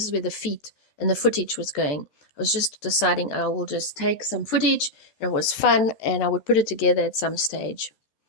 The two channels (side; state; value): right; late; 14 ms